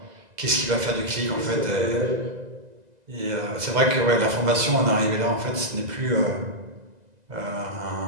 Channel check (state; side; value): late; left; 2.0 ms